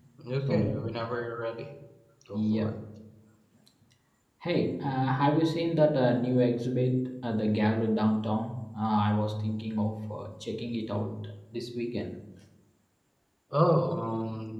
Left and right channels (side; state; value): both; identical; correlation 1.00